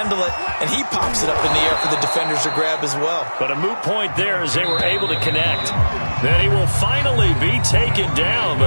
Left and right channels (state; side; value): inverted; both; correlation -1.00